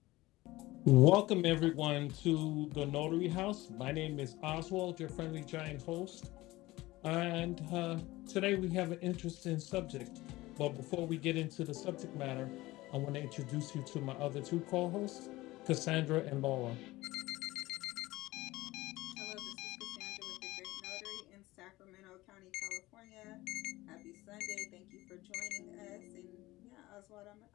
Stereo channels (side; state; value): right; quieter; 18.9 dB